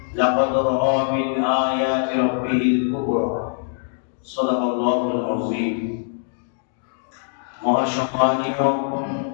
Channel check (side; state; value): right; silent; digital silence